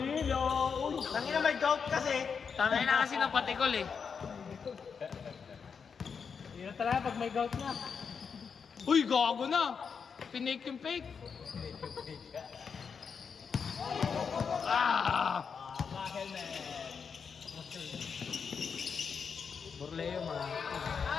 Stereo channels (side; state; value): right; quieter; 6.1 dB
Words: Tangina may gout kasi. Tangay na kasi ng patikol eh. Hirap talaga pag may gout na. Uy, gago na! Pinake yung fake. Burleo mga.